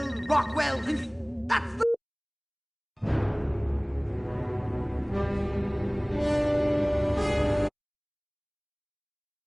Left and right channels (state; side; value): identical; both; correlation 1.00